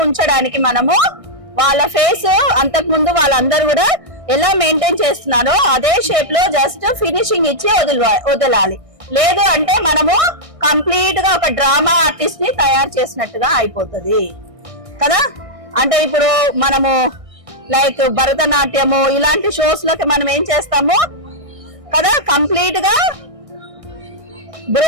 ఉంచడానికి మనము వాళ్ళ ఫేస్ అంతకు ముందు వాళ్ళందరూ కూడా ఎలా మెయింటైన్ చేస్తున్నారో అదే షేప్ లో జస్ట్ ఫినిషింగ్ ఇచ్చి వదలాలి. లేదు అంటే మనము కంప్లీట్ గా ఒక డ్రామా ఆర్టిస్ట్ ని తయారు చేసినట్టుగా అయిపోతుంది కదా. అంటే ఇప్పుడు మనము లైక్ భరతనాట్యము ఇలాంటి షోస్ లోకి మనం ఏం చేస్తాము కదా, కంప్లీట్ గా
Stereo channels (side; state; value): left; late; 1.6 ms